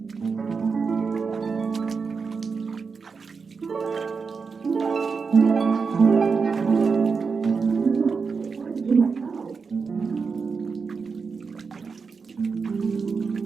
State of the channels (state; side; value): quieter; left; 5.1 dB